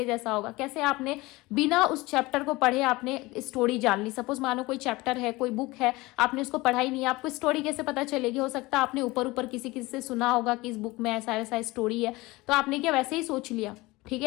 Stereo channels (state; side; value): quieter; right; 21.4 dB